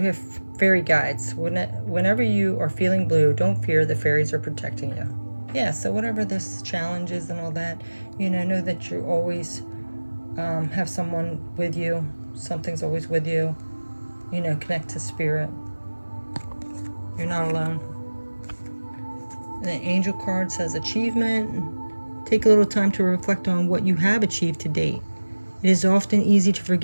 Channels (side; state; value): both; inverted; correlation -1.00